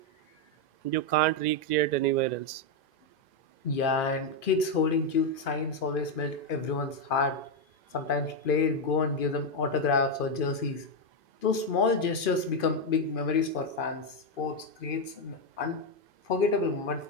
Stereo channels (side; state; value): right; late; 2.5 ms